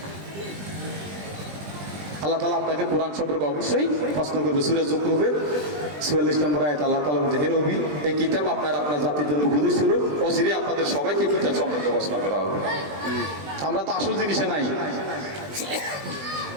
আল্লাহ তাআলা আপনাকে কোরআন সম্পর্কে অবশ্যই প্রশ্ন করবে। সূরা যুকরুফের 44 নম্বর আয়াত আল্লাহ তাআলা বলছে, হে নবী, এই কিতাব আপনার জাতির জন্য উপদেশ স্বরূপ, অচিরে আপনাদের সবাইকে কিতাব সম্পর্কে প্রশ্ন করা হবে। আমরা তো আসল জিনিসে নাই।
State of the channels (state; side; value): late; left; 20 ms